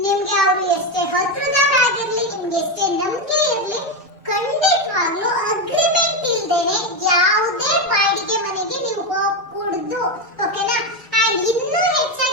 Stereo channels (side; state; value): both; normal; correlation 0.10